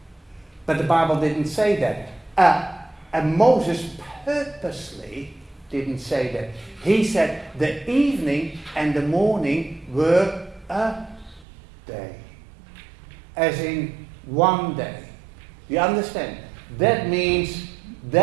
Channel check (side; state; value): left; drops out; at 11.5 s